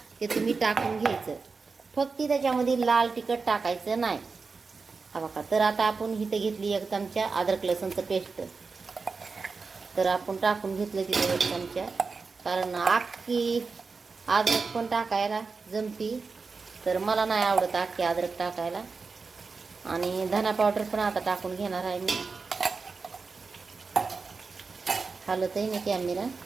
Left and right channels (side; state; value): left; quieter; 4.5 dB